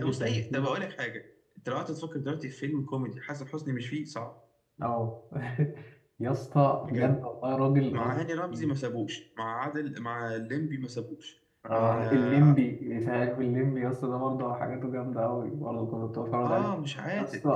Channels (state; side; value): identical; both; correlation 1.00